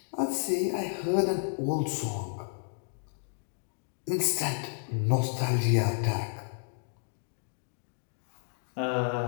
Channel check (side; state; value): right; silent; digital silence